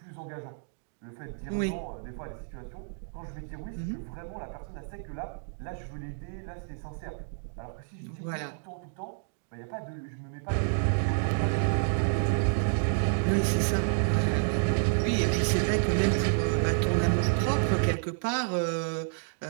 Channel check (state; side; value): silent; left; digital silence